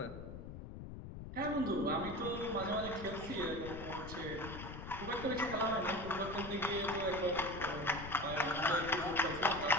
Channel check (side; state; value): left; noise; rumble, 10 dB below the sound